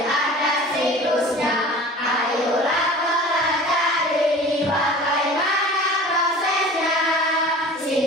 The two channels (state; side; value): normal; both; correlation 0.41